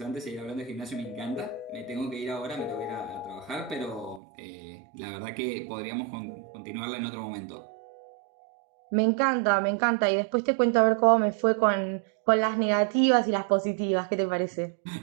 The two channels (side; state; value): left; drops out; at 4.2 s